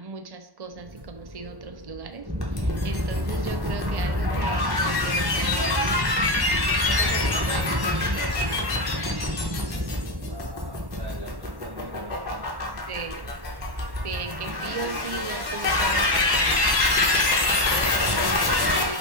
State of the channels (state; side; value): late; left; 1.1 ms